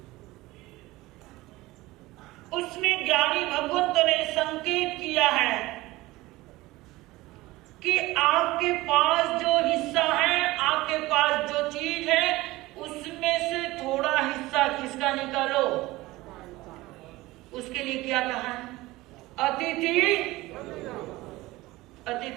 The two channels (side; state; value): left; quieter; 19.3 dB